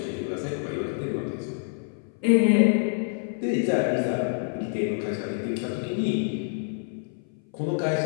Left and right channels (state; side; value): silent; right; 58 dB below the other